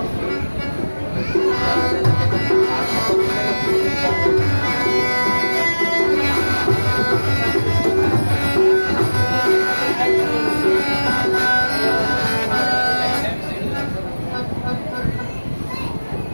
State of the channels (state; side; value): inverted; both; correlation -1.00